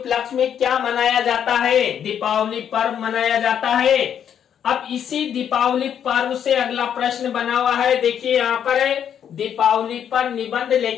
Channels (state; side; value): quieter; right; 8.9 dB